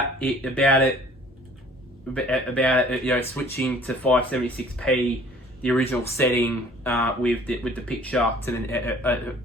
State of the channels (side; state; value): both; normal; correlation 0.53